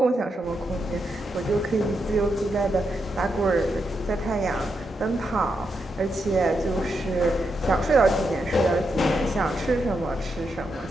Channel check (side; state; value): both; normal; correlation 0.83